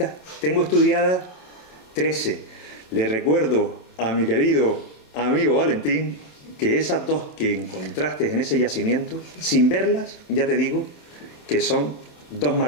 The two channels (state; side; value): late; right; 27 ms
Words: tengo estudiadas 13. Le recuerdo a mi querido amigo Valentín que esas 2 que encontraste en ese yacimiento, sin verlas, ya te digo que son 2